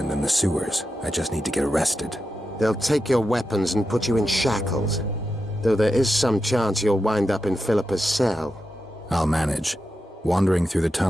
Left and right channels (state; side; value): normal; both; correlation 0.89